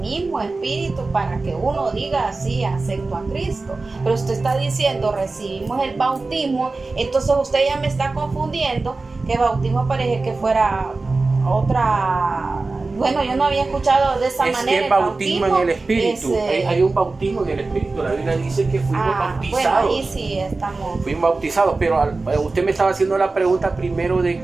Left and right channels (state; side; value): quieter; left; 3.6 dB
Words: Espíritu para que uno diga así, acepto a Cristo. Pero usted está diciendo, recibimos el bautismo, entonces usted ya me está confundiendo, que bautismo parece que fuera otra. Bueno, yo no había escuchado de esa manera. Es el bautismo en el Espíritu. Hay un bautismo en el Espíritu. La Biblia dice que fuimos bautizados. Bueno, ahí sí estamos. Fuimos bautizados, pero usted me estaba haciendo la pregunta primero de